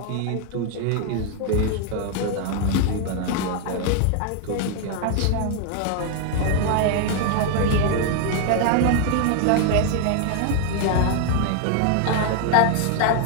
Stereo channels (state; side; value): different; both; correlation 0.01